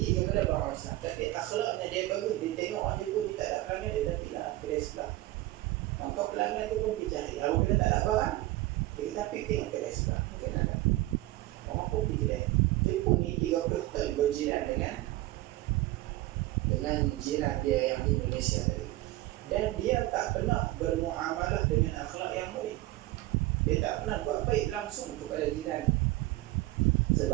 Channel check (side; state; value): left; quieter; 17.7 dB